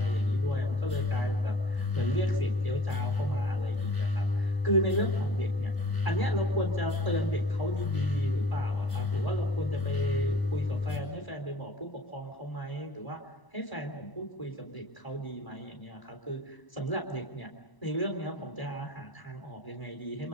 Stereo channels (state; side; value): late; right; 1.0 ms